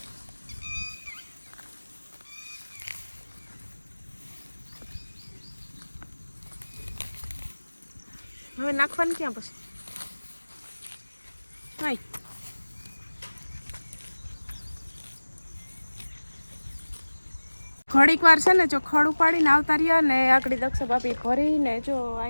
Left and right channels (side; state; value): both; inverted; correlation -1.00